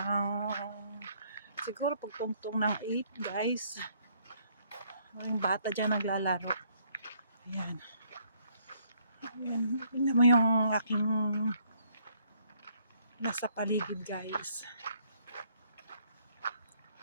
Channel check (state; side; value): inverted; both; correlation -0.66